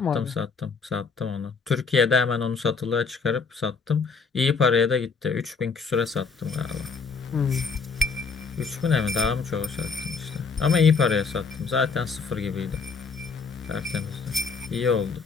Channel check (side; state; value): right; quieter; 5.0 dB